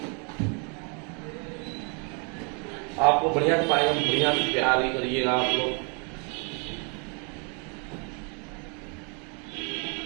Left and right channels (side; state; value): left; quieter; 36.5 dB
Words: आपको बढ़िया से पाएंगे, बढ़िया से प्यार ही करिएगा आप लोग।